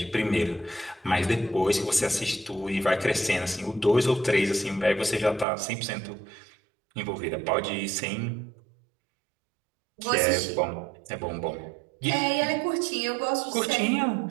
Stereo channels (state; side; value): drops out; left; at 5.5 s